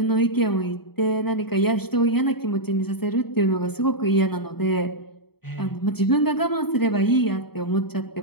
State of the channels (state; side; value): late; right; 0.96 ms